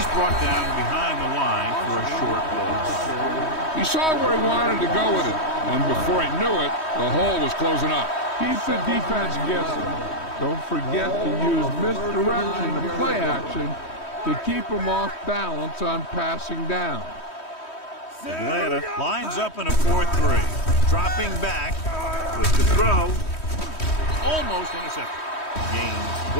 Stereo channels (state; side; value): late; right; 3.1 ms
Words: brought down behind the line for a short loss. He saw where he wanted to go with it, and before he knew it, the hole was closing up. Keep the defense guessing. Don't forget to use misdirection and play action to keep them off balance on passing down. Atlanta lines up in a 4-3. Dropping back with the throw. Almost intercepted. Gaines